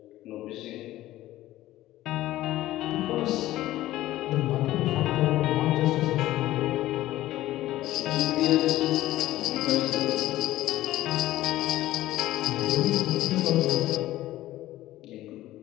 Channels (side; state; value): right; quieter; 15.3 dB